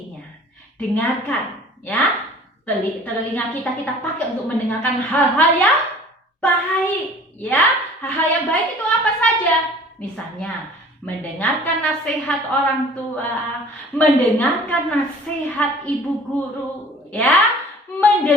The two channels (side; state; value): both; normal; correlation 0.48